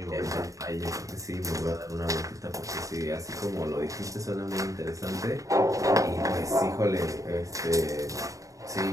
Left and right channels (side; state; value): left; late; 0.16 ms